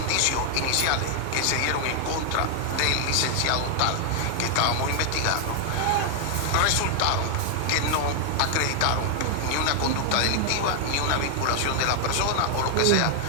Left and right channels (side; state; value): both; different; correlation 0.00